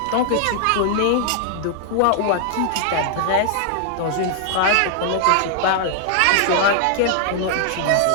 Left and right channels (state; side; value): different; both; correlation 0.00